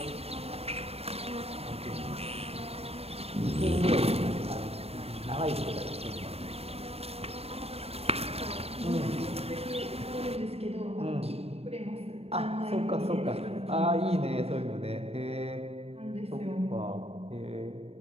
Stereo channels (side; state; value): left; late; 0.29 ms